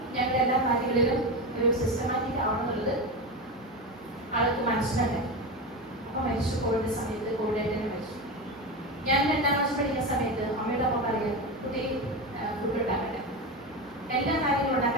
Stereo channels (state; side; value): normal; both; correlation 0.19